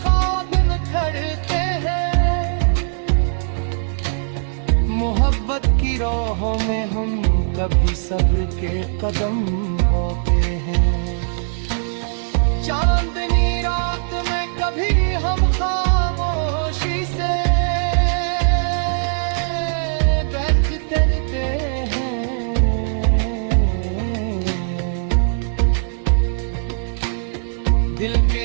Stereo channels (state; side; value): silent; left; 62 dB below the other